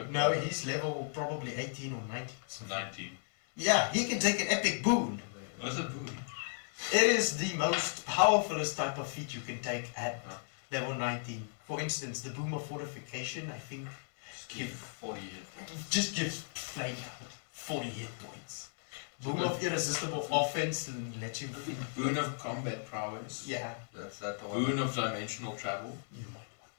No, he's level probably 18 or 19. 19. Yeah, he can take an epic boon. What's a boon? It is the most powerfulest type of feat you can take at level 19. For instance, the Boom of Fortification, I think, Give 40 hit. just gives Flame 40 hit points. Boom of Irresistible Offense and let you... Boon of combat prowess. Yeah. That's that the one. Boon of dimensional travel. You might want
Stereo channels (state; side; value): silent; right; digital silence